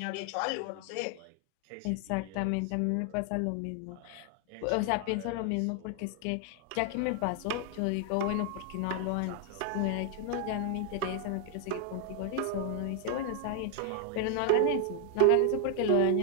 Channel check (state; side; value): different; both; correlation 0.00